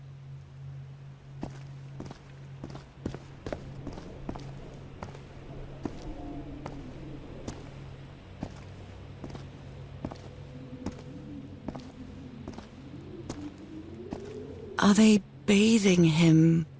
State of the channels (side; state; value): both; identical; correlation 1.00